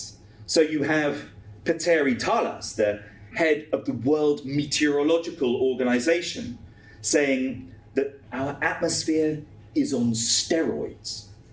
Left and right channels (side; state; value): both; identical; correlation 1.00